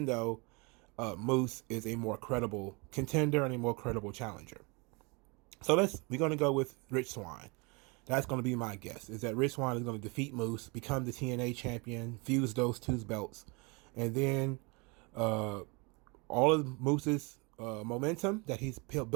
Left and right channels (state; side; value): quieter; left; 29.2 dB